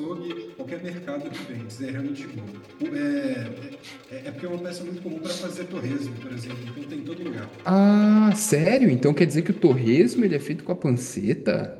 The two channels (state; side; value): identical; both; correlation 1.00